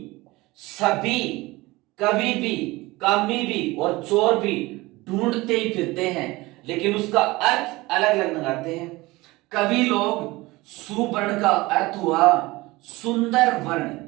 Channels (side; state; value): left; quieter; 21.0 dB